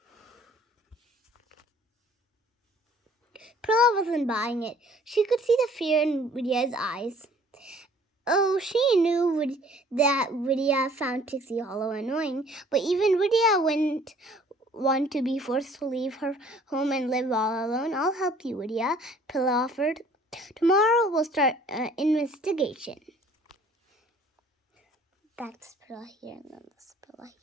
Pilla wasn't buying it. She could see the fear in Vidia's eyes. Oh, she knew that Vidia found Pixie Hollow annoying, but even Vidia wouldn't want to be forced to leave her home and live all alone. I'll help you, Vidia, Pilla offered. Tomorrow we'll start an investigation. That's Pilla here and then this Pilla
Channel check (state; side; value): normal; both; correlation 0.55